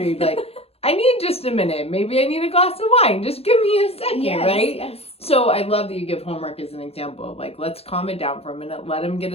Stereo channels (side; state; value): right; late; 0.29 ms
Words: You'd be like, I need just a minute. Maybe I need a glass of wine. Just give me a second, right? Yes. So I love that you give homework as an example of like, let's calm it down for a minute. Let them get